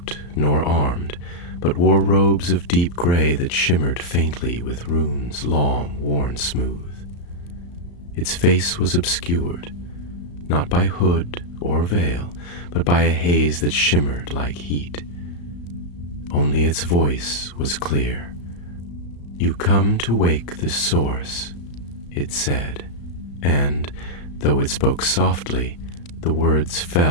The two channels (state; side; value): late; right; 34 ms